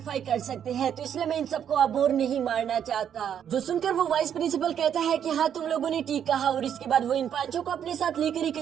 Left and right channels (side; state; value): left; quieter; 9.0 dB